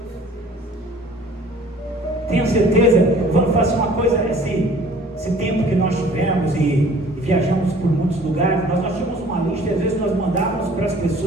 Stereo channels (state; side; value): normal; both; correlation 0.51